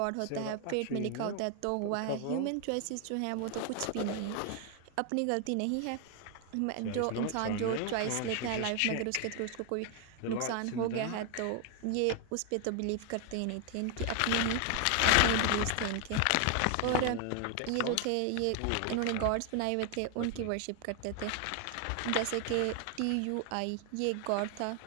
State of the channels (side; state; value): both; different; correlation 0.00